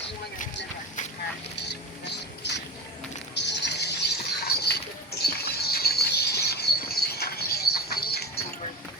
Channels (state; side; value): normal; both; correlation 0.26